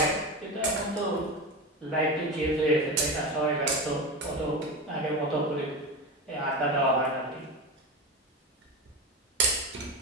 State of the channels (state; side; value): normal; both; correlation 0.22